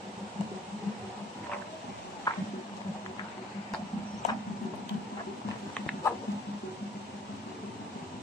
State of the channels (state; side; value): normal; both; correlation 0.55